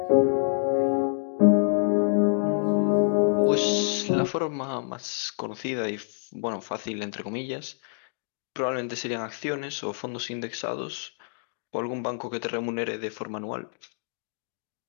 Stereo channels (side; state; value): right; silent; digital silence